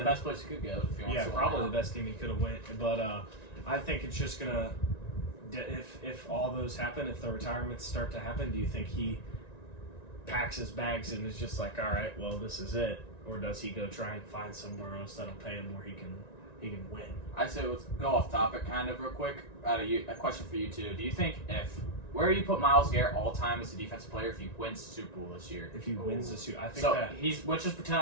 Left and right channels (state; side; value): late; right; 1.9 ms